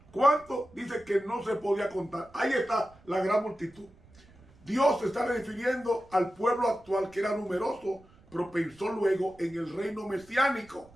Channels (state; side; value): noise; right; rumble, 26 dB below the sound